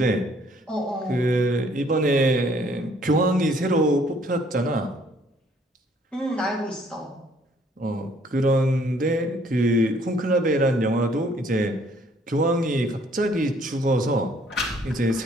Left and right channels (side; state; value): both; normal; correlation 0.62